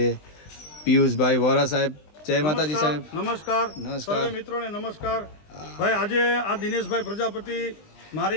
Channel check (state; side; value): late; right; 20 ms